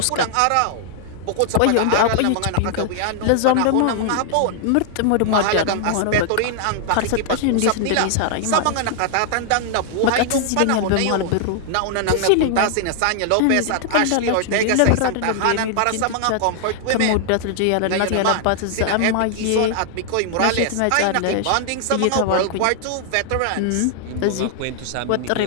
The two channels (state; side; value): different; both; correlation 0.00